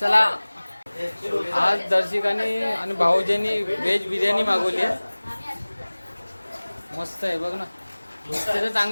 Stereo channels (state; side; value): inverted; both; correlation -1.00